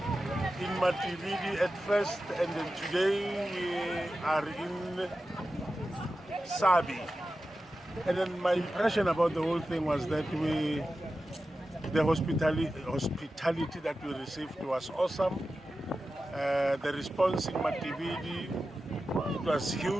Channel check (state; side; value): normal; both; correlation 0.93